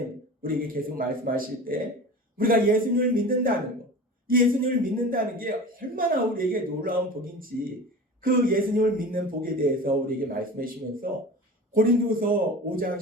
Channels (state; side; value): normal; both; correlation 0.35